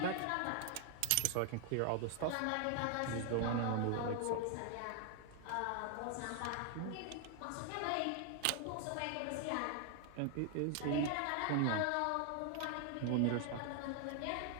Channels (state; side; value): different; both; correlation 0.00